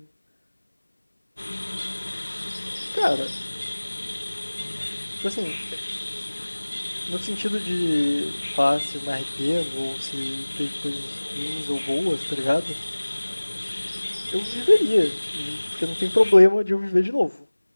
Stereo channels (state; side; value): inverted; both; correlation -1.00